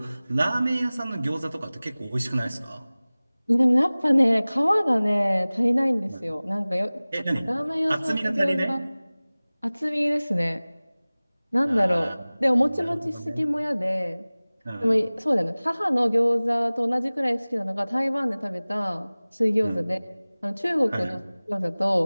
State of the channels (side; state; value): both; inverted; correlation -0.99